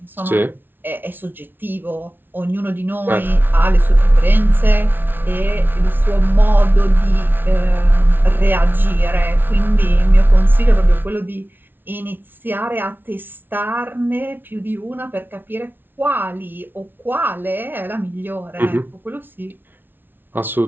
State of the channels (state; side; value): late; left; 0.098 ms